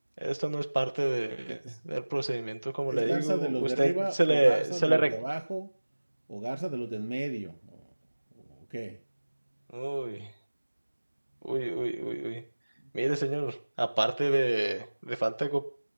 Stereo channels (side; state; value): both; inverted; correlation -1.00